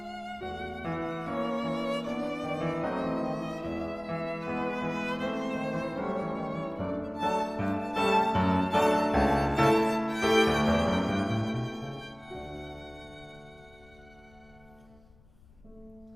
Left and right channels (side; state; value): left; noise; rumble, 27 dB below the sound